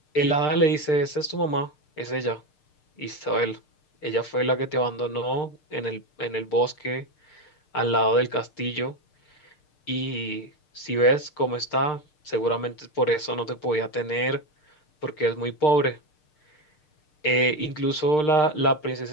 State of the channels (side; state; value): right; late; 6.6 ms